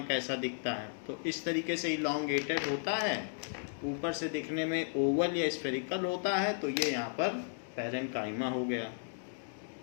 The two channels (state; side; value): silent; right; digital silence